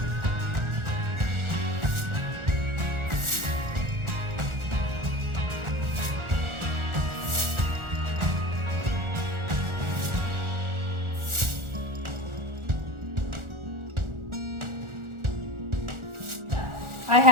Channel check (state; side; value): late; left; 1.4 ms